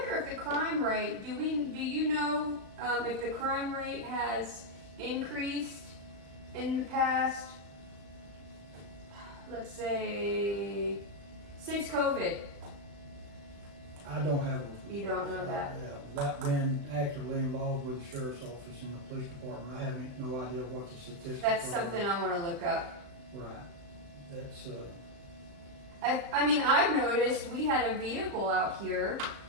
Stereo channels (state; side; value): late; left; 35 ms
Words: if the crime rate, do you know if the crime rate has increased in the past, let's say, since COVID? I don't have. You don't know that? Without being actively involved with the sheriff's office and the police department, I have no idea what the statistics are. That's something I want to look up. Right. That's, I mean, I've noticed we had a vehicle out here